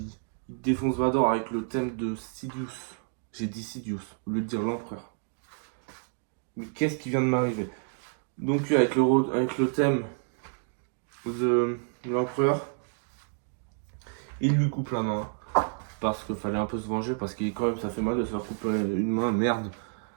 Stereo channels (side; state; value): left; silent; 58 dB below the other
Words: il défonce Vador avec le thème de Sidious. J'ai dit Sidious, au lieu de dire l'empereur. Mais qu'est-ce qui vient de m'arriver? Donc avec le thème de l'empereur, il lui coupe la main. Parce qu'il fallait un peu se venger, parce que quand même ça fait mal de se faire couper une main, merde.